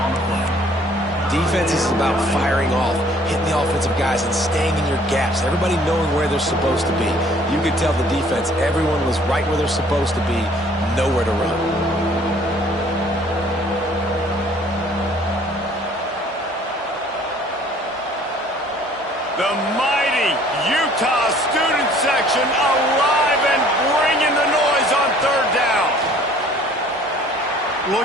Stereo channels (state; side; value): normal; both; correlation 0.56